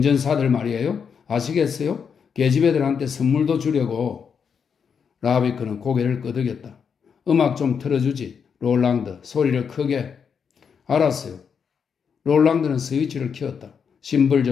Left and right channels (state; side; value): quieter; right; 6.6 dB